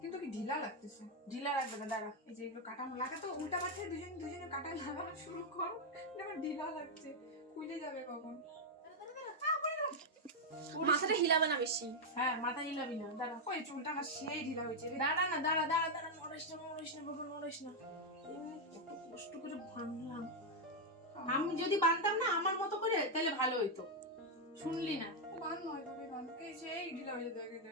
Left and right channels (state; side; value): normal; both; correlation 0.00